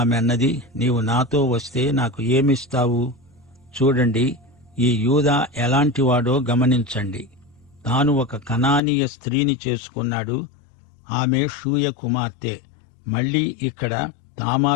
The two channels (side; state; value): right; drops out; at 8.8 s